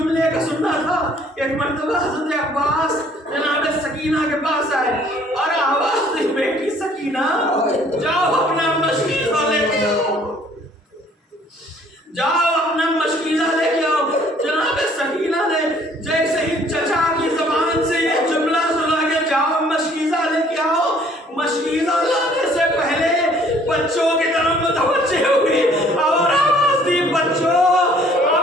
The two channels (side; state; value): both; normal; correlation 0.58